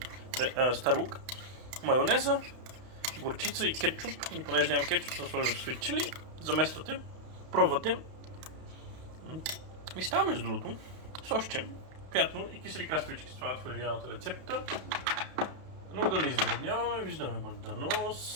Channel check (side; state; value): left; late; 32 ms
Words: стар лук. Майонеза, горчица и кетчуп. И понеже нямам кетчуп, съм сложил sweet chili. Замествате, пробвате. Ми става между другото сощче, приятно и кисели краставички слагат в оригиналната рецепта. Но да не издръбняваме, виждаме